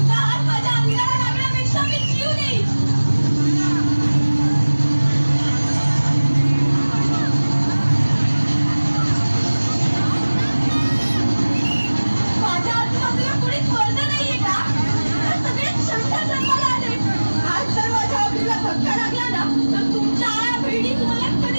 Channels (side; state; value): both; inverted; correlation -1.00